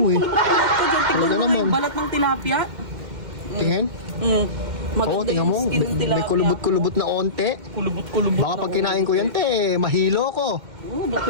eh. Tignan Talaga mo naman. yung balat ng tilapia. Tingin? Mm. Oo, Maganda tingnan yung mo. skin ng tilapia. May kulubot-kulubot na onte. Kulubot-kulubot. Baka pag kinain ko yan, te, mahilo ko. Oo, bakit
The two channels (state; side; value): late; left; 2.1 ms